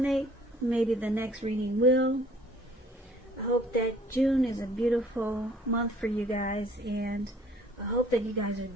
maybe the next reading will. I hope that June is a beautiful month for you guys, and I hope that you guys are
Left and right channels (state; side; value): normal; both; correlation 0.57